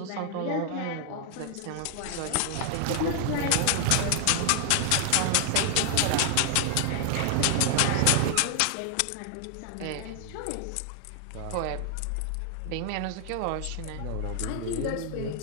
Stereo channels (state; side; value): different; both; correlation 0.00